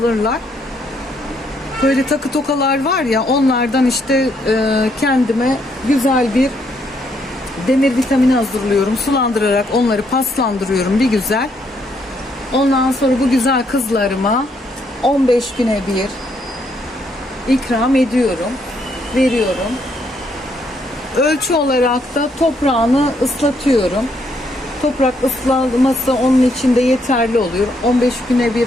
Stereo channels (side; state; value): both; normal; correlation 0.73